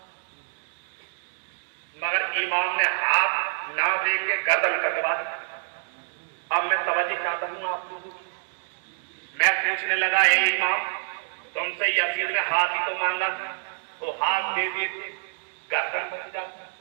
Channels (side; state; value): left; silent; digital silence